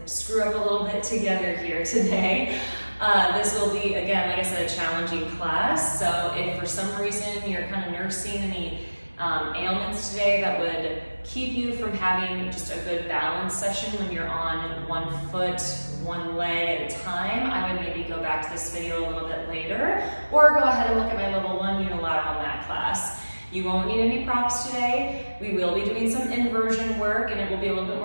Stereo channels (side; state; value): both; inverted; correlation -1.00